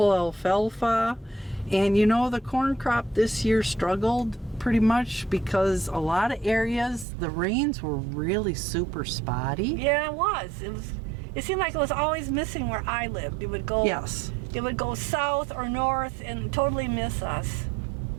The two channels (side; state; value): left; drops out; at 7.1 s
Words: alfalfa. And you know, the corn crop this year struggled pretty much because a lot of areas, the rains were really super spotty. Yeah, it was. It seemed like it was always missing where I lived. It would go Yes. It would go south or north and totally miss us.